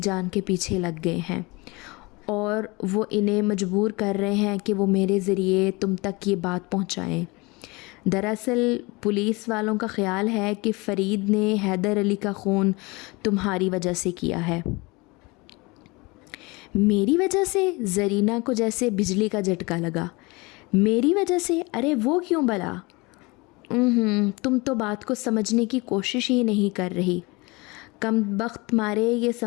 کے پیچھے لگ گئے ہیں اور وہ انہیں مجبور کر رہے ہیں کہ وہ میرے ذریعے تم تک یہ بات پہنچائیں۔ دراصل پولیس والوں کا خیال ہے کہ فرید نے حیدر علی کا خون تمہاری وجہ سے کیا ہے۔ میری وجہ سے؟ زرینہ کو جیسے بجلی کا جھٹکا لگا۔ میری وجہ سے؟ ارے وہ کیوں بلا؟ تم تو بات کو سمجھنے کی کوشش ہی نہیں کر رہی۔ کم بخت مارے یہ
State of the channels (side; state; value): right; quieter; 25.2 dB